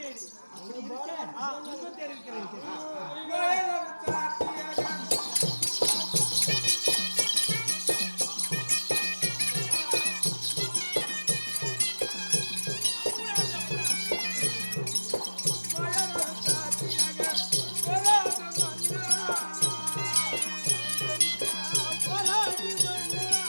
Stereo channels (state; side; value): inverted; both; correlation -1.00